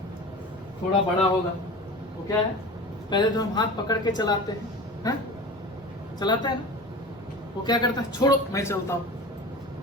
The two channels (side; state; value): both; normal; correlation 0.35